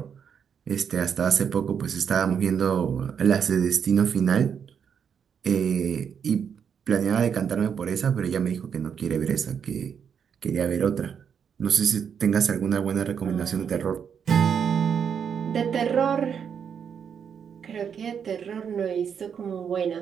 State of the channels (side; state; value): left; quieter; 7.4 dB